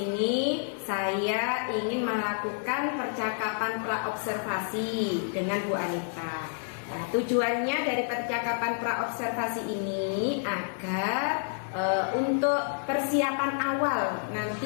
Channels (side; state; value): right; silent; 59 dB below the other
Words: saya ingin melakukan percakapan praobservasi dengan Bu Anita. Nah, tujuannya dari percakapan praobservasi ini agar untuk persiapan awal